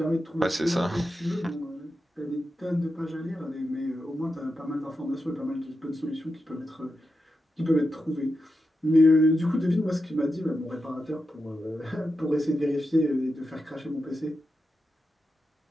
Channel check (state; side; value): normal; both; correlation 0.89